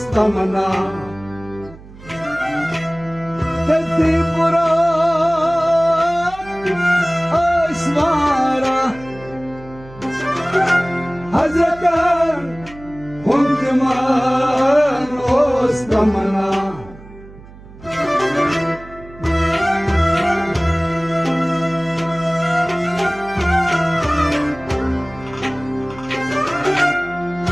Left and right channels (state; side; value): noise; right; hum, 19 dB below the sound